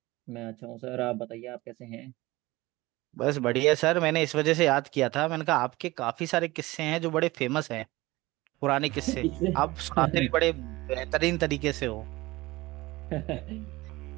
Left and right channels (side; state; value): left; quieter; 20.1 dB